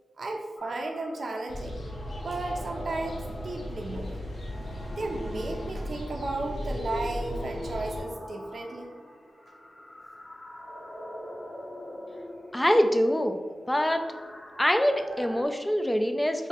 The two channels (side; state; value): both; normal; correlation 0.96